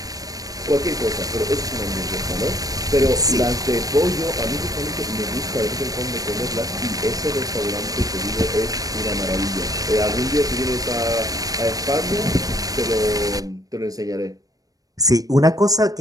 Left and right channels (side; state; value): left; late; 0.18 ms